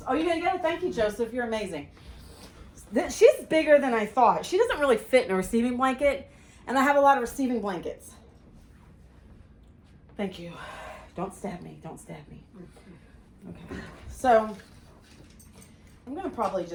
Oh, you're gonna get it? Thank you, Joseph. You're amazing. She's bigger than I thought. She doesn't really fit in a receiving blanket, and I have a lot of receiving blankets. Thank you. Don't stab me. Don't stab me. Okay, so I'm gonna probably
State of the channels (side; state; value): both; identical; correlation 1.00